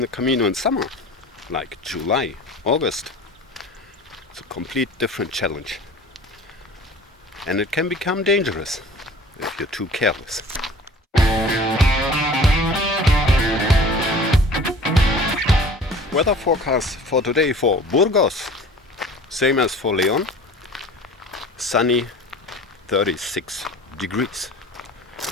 Camino in summer, like July, August, it's a complete different challenge. And it can become dangerous if you're too careless. Weather forecast for today for Burgos, same as for Leon. Sunny, 36 degrees.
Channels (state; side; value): normal; both; correlation 0.43